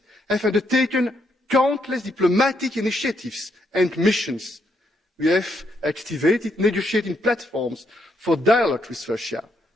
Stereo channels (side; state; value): both; normal; correlation 0.75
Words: have undertaken countless diplomatic initiatives and missions. We have activated negotiating platforms for dialogue with Russia,